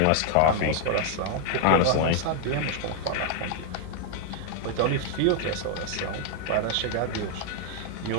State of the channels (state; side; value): different; both; correlation 0.00